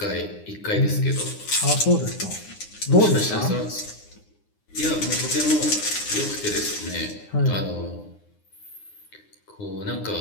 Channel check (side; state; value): right; late; 9.7 ms